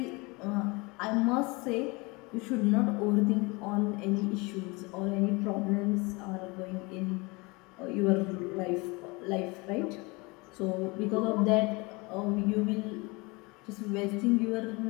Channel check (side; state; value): right; quieter; 26.1 dB